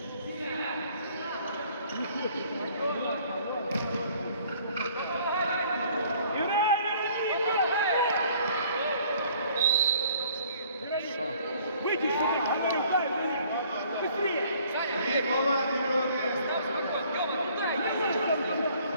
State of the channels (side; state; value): both; inverted; correlation -0.57